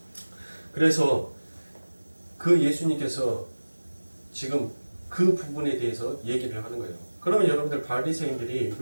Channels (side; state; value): both; inverted; correlation -1.00